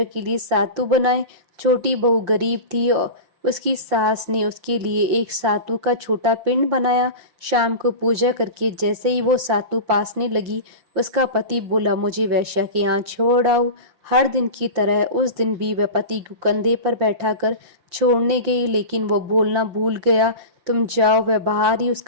के लिए सातु बनाए। छोटी बहू गरीब थी और उसकी सास ने उसके लिए एक सातु का छोटा पिंड बनाया। शाम को पूजा करके जैसे ही वो सातु पासने लगी, उसका पति बोला, मुझे वेश्या के यहाँ छोड़ आओ। हर दिन की तरह उस दिन भी वह पति को कंधे पर बैठाकर छोड़ने गई, लेकिन वो बोलना भूल गया, तुम जाओ। वह बाहर ही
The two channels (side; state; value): left; late; 5.6 ms